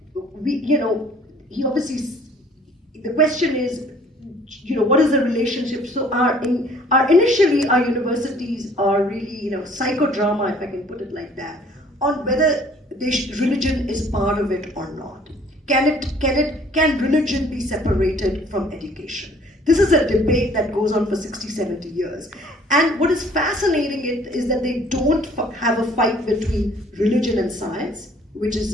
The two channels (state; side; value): normal; both; correlation 0.56